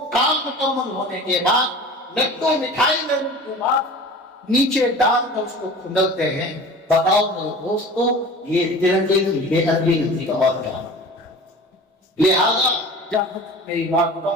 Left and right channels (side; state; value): both; normal; correlation 0.39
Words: کام مکمل ہونے کے بعد لڈو مٹھائی لینے کے بعد نیچے ڈال کر اس کو کھندلتے ہیں. بتاؤ میرے دوستو یہ ترنگے کی بے ادبی نہیں اور کیا؟ لہذا جہاں میری بات